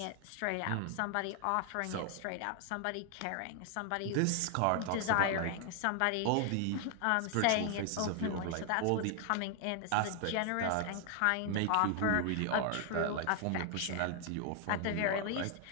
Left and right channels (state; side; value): different; both; correlation 0.00